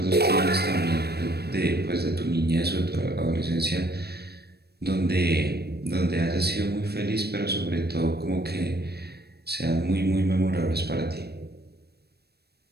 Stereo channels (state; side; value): late; left; 0.47 ms